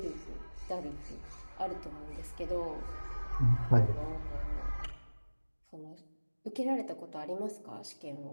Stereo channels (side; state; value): both; inverted; correlation -1.00